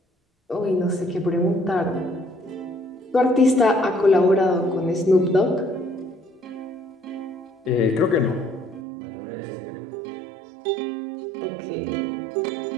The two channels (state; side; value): drops out; left; at 8.8 s